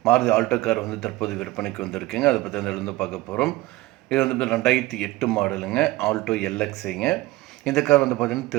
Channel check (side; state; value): left; quieter; 18.8 dB